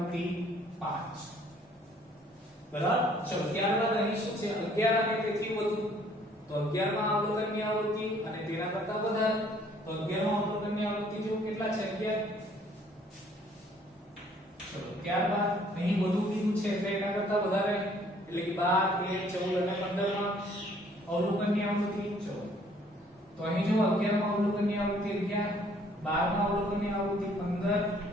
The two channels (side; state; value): both; normal; correlation 0.60